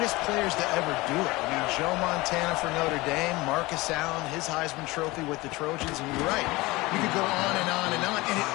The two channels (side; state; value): right; quieter; 21.4 dB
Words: players to ever do it. I mean, Joe Montana for Notre Dame, Marcus Allen, his Heisman Trophy with the Trojans, and you're right. You could go on and on and on, and it